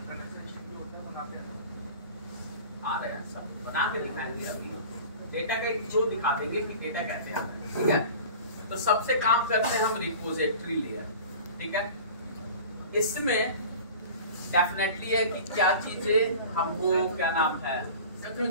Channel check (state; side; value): inverted; both; correlation -0.39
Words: आ रहे हैं सब बना के दिखाएंगे, अभी डेटा का एक जो दिखा देंगे कि डेटा कैसे आता है, ठीक है। तो सबसे काम करते हैं हम रिपोजिटरी लेयर, ठीक है। इसमें डेफिनेटली है कि क्या चीजें हमको, क्या नाम है,